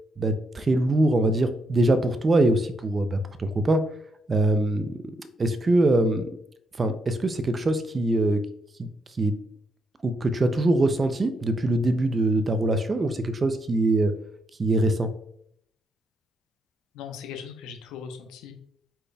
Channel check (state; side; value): normal; both; correlation 0.79